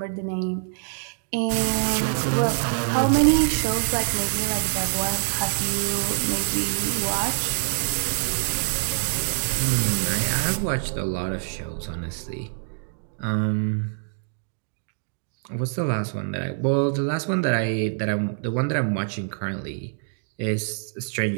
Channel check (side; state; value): left; silent; digital silence